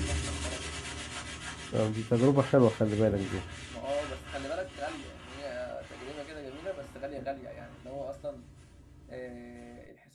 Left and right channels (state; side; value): identical; both; correlation 1.00